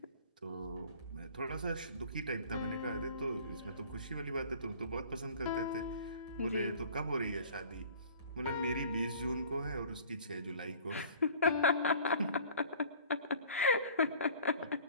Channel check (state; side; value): inverted; both; correlation -0.48